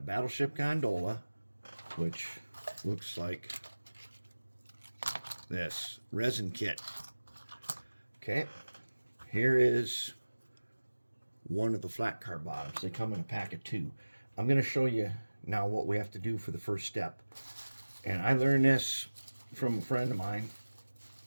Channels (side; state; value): both; inverted; correlation -1.00